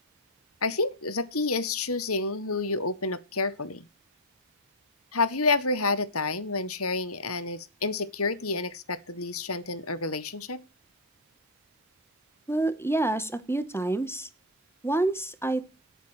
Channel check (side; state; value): both; normal; correlation -0.04